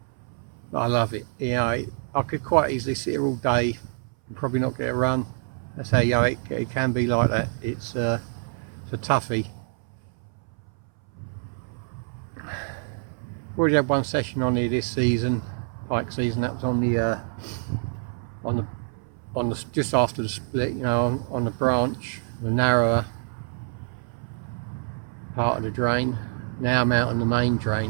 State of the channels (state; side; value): silent; left; 59 dB below the other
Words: but I love it. You know, I could quite easily sit here all day and probably not get a run. That's how, you know, it can be like that. It's a toughie. Already had one session on here this season, pike season. That was on the just after the split, you know, on the branch, the narrower part of the drain. Now I'm out on the main